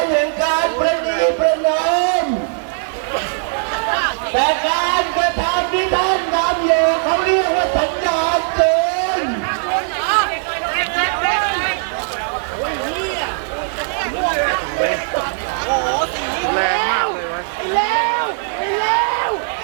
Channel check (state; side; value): silent; left; 67 dB below the other